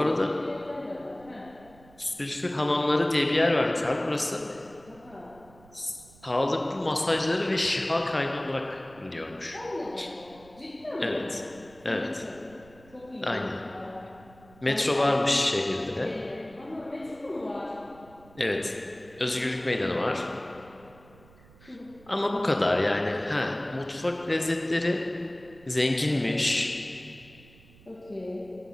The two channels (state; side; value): noise; right; rumble, 24 dB below the sound